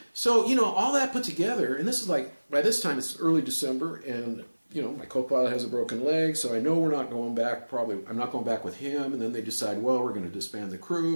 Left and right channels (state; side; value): inverted; both; correlation -1.00